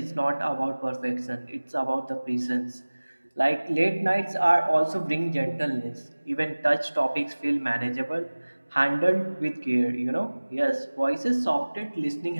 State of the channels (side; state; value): both; inverted; correlation -1.00